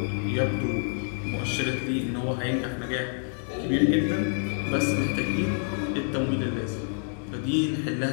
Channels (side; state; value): right; silent; 60 dB below the other